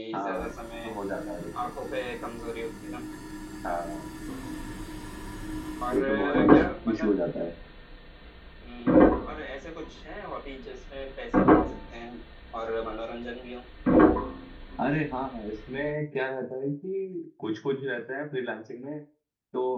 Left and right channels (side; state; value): both; identical; correlation 1.00